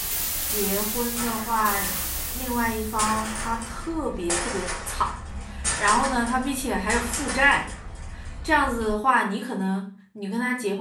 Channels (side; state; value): both; identical; correlation 1.00